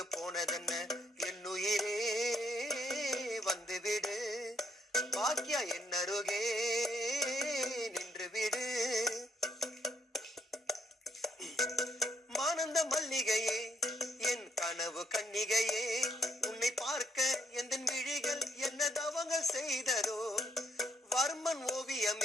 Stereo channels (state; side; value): normal; both; correlation 0.72